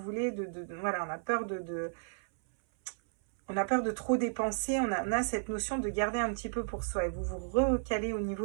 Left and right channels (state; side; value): silent; left; 56 dB below the other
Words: voilà, on a peur on a peur de trop dépenser. On a cette notion de garder un petit peu pour soi. Et vous vous recalez au